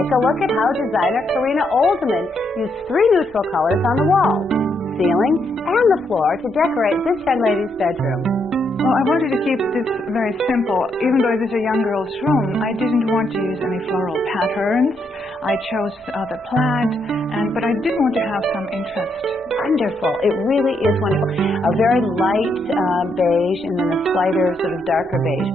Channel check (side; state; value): both; normal; correlation 0.77